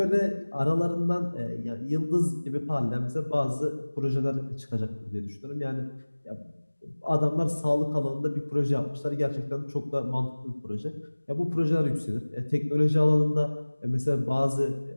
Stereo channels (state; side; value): inverted; both; correlation -1.00